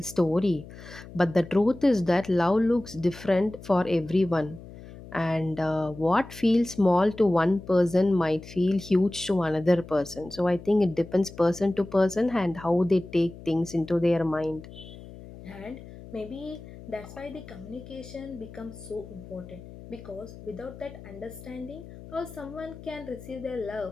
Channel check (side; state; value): left; noise; hum, 16 dB below the sound